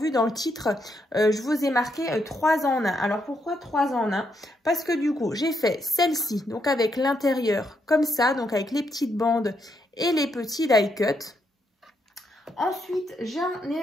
dans le titre, je vous ai marqué 3 en 1. Alors pourquoi 3 en 1? Parce que du coup j'ai fait celle-ci, donc avec l'intérieur comme ça, donc avec les petites bandes et les petits die cuts. Ensuite j'en ai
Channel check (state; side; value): normal; both; correlation 0.78